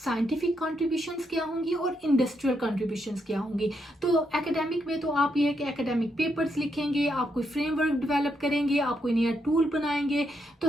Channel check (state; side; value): normal; both; correlation 0.79